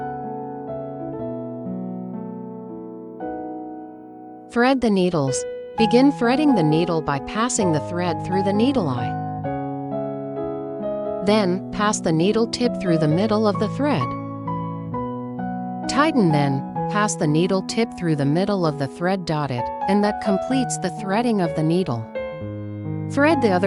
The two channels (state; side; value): identical; both; correlation 1.00